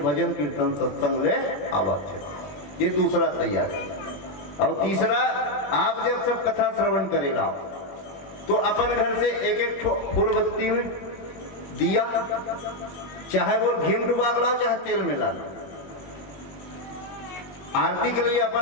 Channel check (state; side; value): late; right; 21 ms